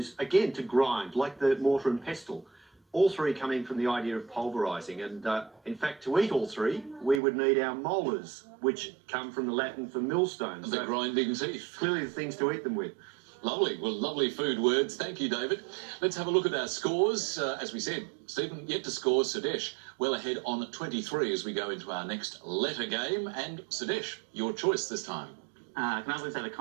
again, to grind, like the mortar and pestle. All three coming from the idea of pulverising. And in fact, to eat all three, we would need our molars, which come from the Latin for millstones. The grinding teeth. Clearly the things to eat them with. Lovely. Well, lovely food words. Thank you, David. Let's have a look at our scores. As we said, Stephen yet to score. Sudesh well ahead on 23 as we go into our next letter game. And Sudesh, your choice this time. Can I please have a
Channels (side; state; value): left; drops out; at 7.2 s